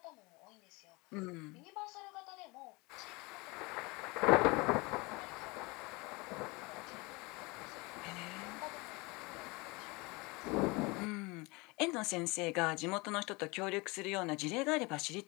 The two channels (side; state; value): right; quieter; 25.6 dB